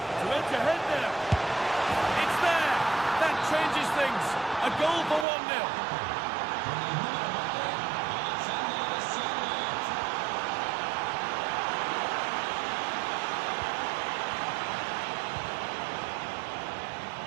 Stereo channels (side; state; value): left; drops out; at 5.2 s